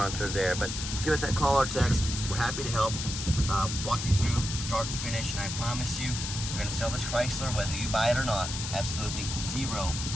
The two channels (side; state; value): left; noise; hiss, 5 dB below the sound